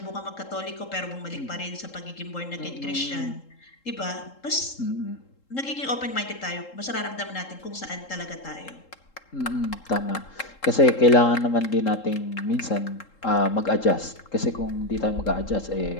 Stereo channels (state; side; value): late; right; 3.7 ms